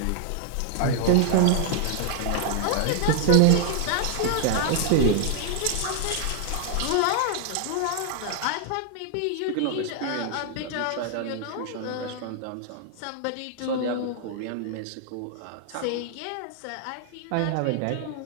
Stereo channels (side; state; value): both; different; correlation 0.00